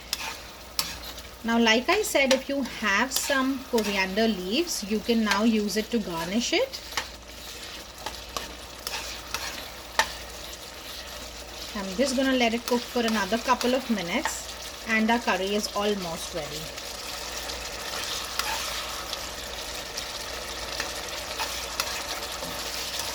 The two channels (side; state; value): both; identical; correlation 1.00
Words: Now, like I said, if you have some coriander leaves, you can now use it to garnish it. I'm just going to let it cook for another couple of minutes, and our curry is almost ready.